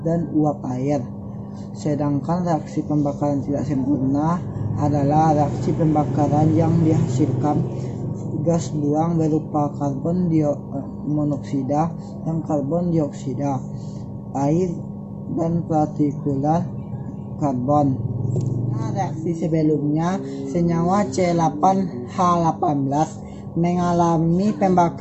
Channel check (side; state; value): both; identical; correlation 1.00